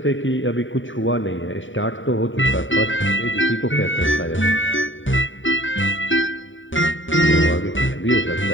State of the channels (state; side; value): late; right; 0.56 ms